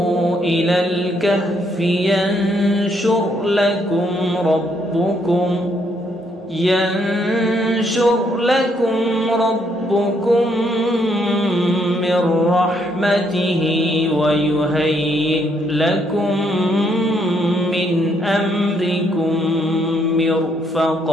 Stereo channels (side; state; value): both; normal; correlation 0.72